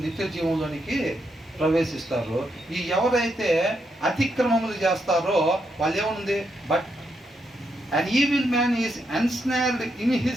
నిత్య జీవంలోనికి ప్రవేశిస్తారు. ఈ ఎవరైతే అతిక్రమములు చేస్తారో వాళ్ళు ఏముంది, but an evil man is ensnared in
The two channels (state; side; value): normal; both; correlation 0.80